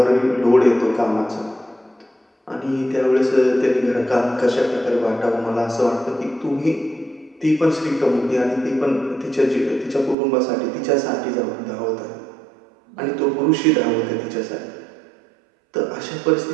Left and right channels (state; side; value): drops out; left; at 10.2 s